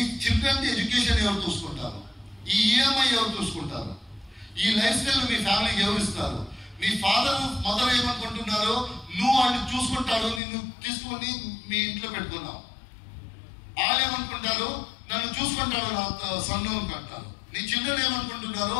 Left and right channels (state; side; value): drops out; right; at 10.4 s